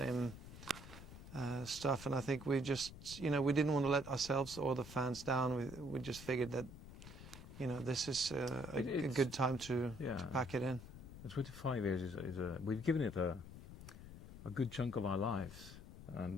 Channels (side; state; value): left; noise; rumble, 14 dB below the sound